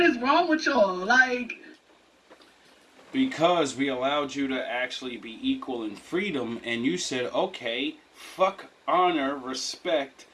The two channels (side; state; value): both; identical; correlation 1.00